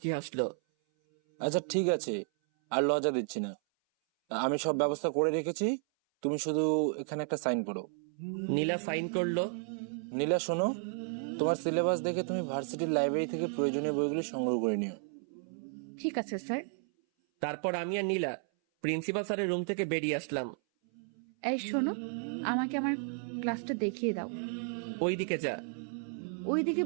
হাসলো। আচ্ছা ঠিক আছে, আর লজ্জা দিচ্ছি না, আমি সব ব্যবস্থা করে রেখেছি, তুমি শুধু এখানে একটা সাইন করো। নীলা সাইন করলো। নীলা শোনো, তোমার সিলেবাস দেখে তুমি ভার্সিটির লাইব্রেরি থেকে প্রয়োজনীয় বইগুলি সংগ্রহ করে নিও। ঠিক আছে স্যার। তারপর আমি আর নীলা প্রিন্সিপাল স্যারের রুম থেকে বেরিয়ে আসলাম। এই শোনো, আমাকে আমার ক্লাসটা দেখিয়ে দাও। ওই দিকে যা। ওই দিকে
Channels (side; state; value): left; silent; 56 dB below the other